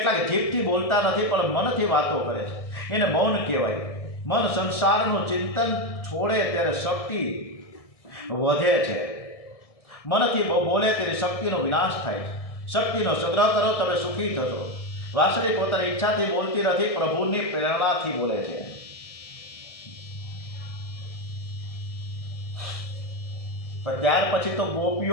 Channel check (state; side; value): late; right; 1.6 ms